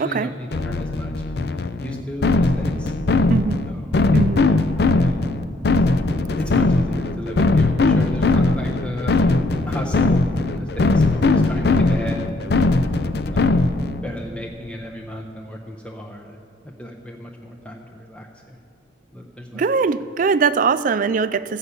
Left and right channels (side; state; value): both; normal; correlation 0.60